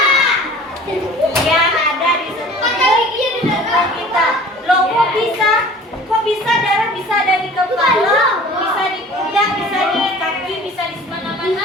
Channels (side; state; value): both; normal; correlation 0.45